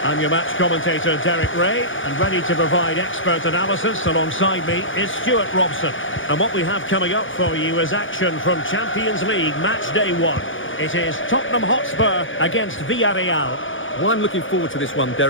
I'm your match commentator, Derek Ray, and ready to provide expert analysis alongside me is Stuart Robson. And what we have coming up for you is action from Champions League Match Day 1. It is Tottenham Hotspur against Villarreal. Well, I'm looking forward to this one,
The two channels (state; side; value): late; right; 0.57 ms